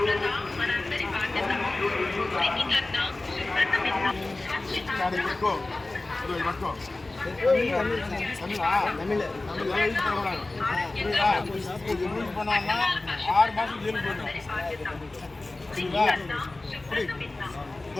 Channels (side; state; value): right; quieter; 3.0 dB